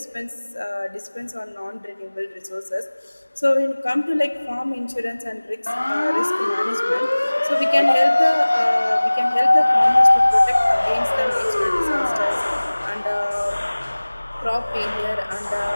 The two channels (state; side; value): inverted; both; correlation -1.00